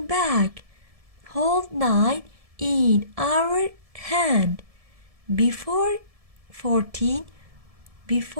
back. Hold 9 in our hand. Before 14,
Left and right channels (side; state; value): left; late; 1.7 ms